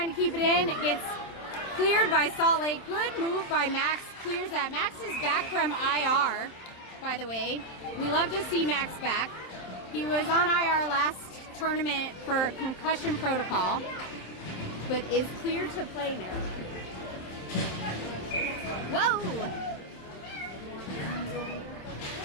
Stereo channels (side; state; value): right; late; 27 ms